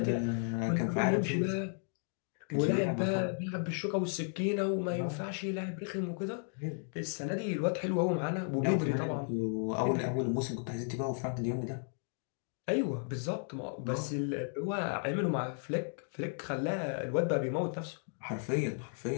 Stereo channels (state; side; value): silent; right; 55 dB below the other